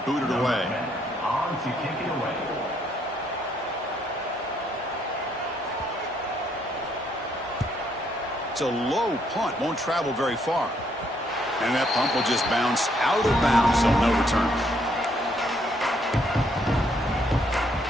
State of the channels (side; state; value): both; normal; correlation 0.71